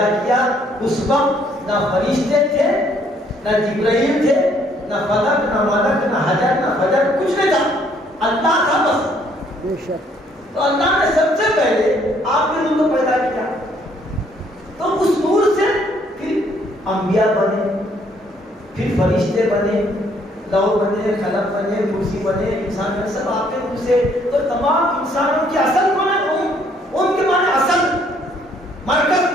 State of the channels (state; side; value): normal; both; correlation 0.65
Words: کیا. اس وقت نہ فرشتے تھے, نہ جبرائیل تھے, نہ فلک, نہ ملک, نہ حجر, نہ فجر, کچھ نہیں تھا, اللہ تھا بس. بے شک. تو اللہ نے سب سے پہلے آپ کے نور کو پیدا کیا. تو اس نور سے پھر انبیاء بنے, پھر فرشتے بنے, لوح بنے, قلم بنے, کرسی بنے, انسان بنے, سب آپ کے نور سے. تو تمام انسانوں کی اصل کون ہے, ان کے معنی اصل, مرکز